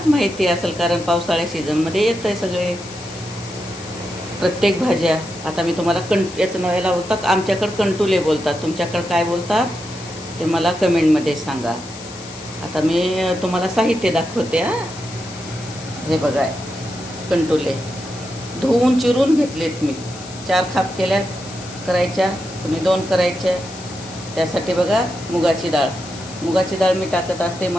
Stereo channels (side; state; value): left; noise; hiss, 16 dB below the sound